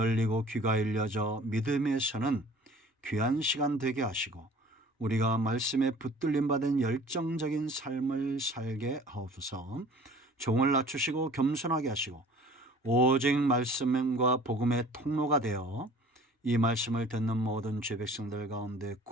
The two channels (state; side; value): normal; both; correlation 0.49